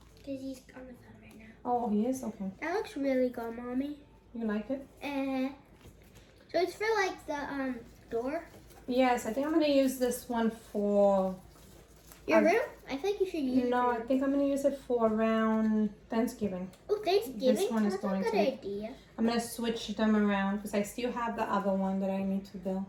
Because he's on the phone right now. Oh, he is? Okay. That looks really good, Mommy. You like it? So it's for like the door? Yes, I think I'm going to use this one for... Your room? I think you should use No, I think I'm going to use it for around Thanksgiving. Oh, Thanksgiving? This one is That's going a good to. idea. I'm going to switch them around because I still have the other one that I need to build.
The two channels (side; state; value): both; identical; correlation 1.00